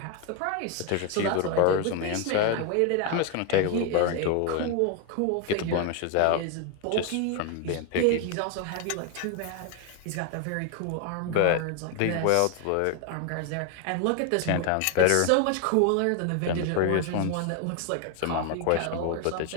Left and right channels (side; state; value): both; different; correlation 0.01